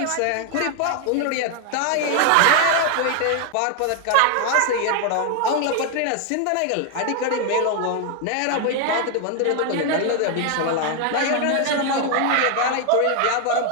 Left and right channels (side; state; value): both; different; correlation 0.00